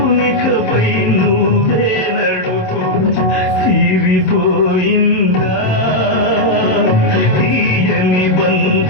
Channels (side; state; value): right; late; 27 ms